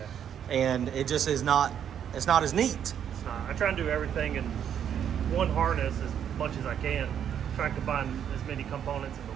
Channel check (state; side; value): quieter; left; 9.0 dB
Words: And it just is not. It's not as neat. It's not. I try and do everything in one harness as much as I can. Try and combine as many components